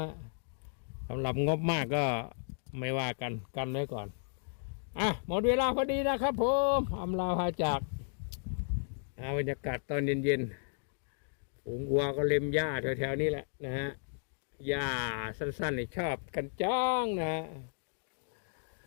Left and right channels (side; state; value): right; silent; digital silence